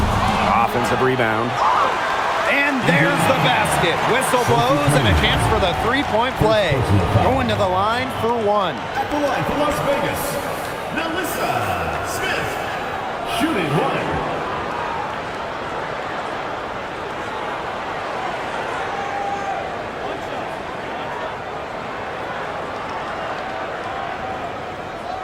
Offensive rebound. And there's the basket. Whistle blows and a chance for the three-point play. Going to the line for 1. At the line for Las Vegas, Melissa Smith. Shooting 1.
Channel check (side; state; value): both; identical; correlation 1.00